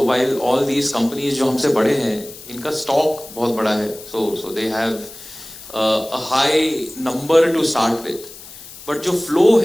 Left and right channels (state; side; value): noise; left; hiss, 17 dB below the sound